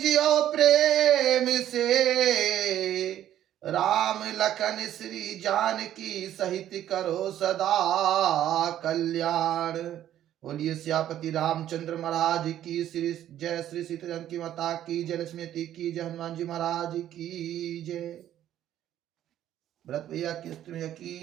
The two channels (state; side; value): quieter; left; 11.8 dB